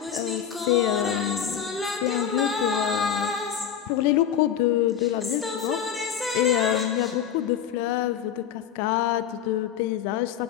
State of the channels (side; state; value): right; quieter; 8.9 dB